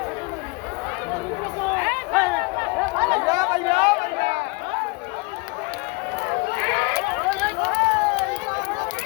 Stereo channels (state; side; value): quieter; right; 28.5 dB